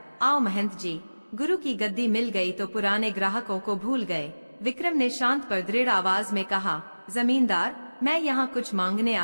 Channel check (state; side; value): inverted; both; correlation -1.00